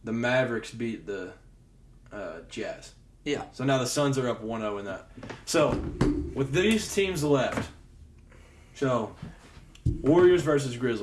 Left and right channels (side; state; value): both; identical; correlation 1.00